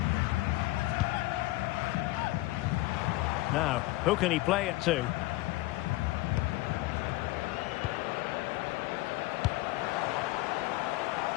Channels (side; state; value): right; quieter; 19.1 dB